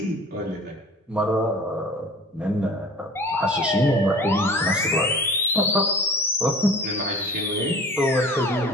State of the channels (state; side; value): normal; both; correlation 0.42